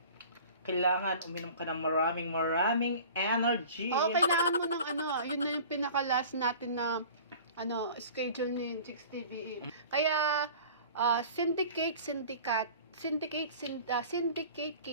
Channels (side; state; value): both; inverted; correlation -0.43